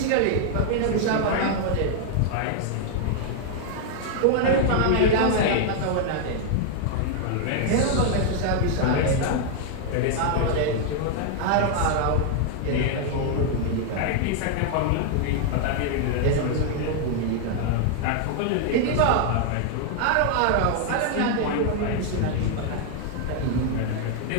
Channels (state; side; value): different; both; correlation 0.00